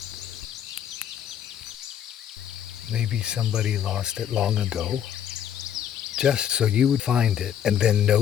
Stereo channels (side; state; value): right; quieter; 9.5 dB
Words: maybe somebody lost it long ago, just so you would find it and then